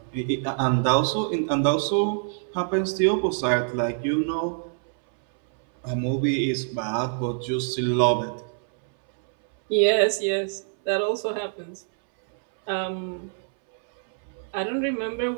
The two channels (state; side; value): silent; left; 61 dB below the other